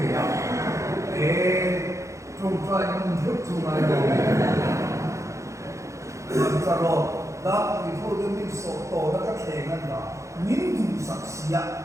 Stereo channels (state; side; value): late; left; 0.15 ms